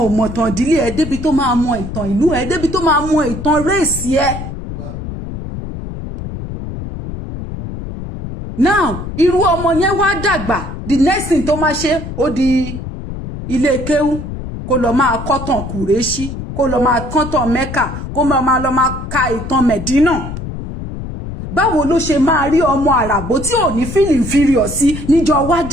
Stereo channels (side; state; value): left; noise; rumble, 8 dB below the sound